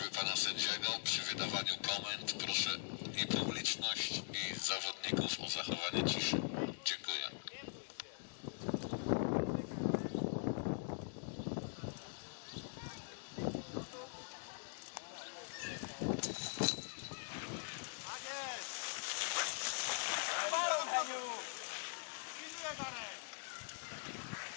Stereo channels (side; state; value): right; silent; digital silence